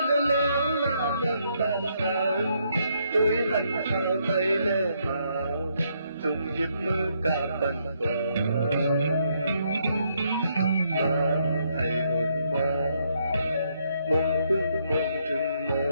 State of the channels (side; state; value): both; inverted; correlation -0.74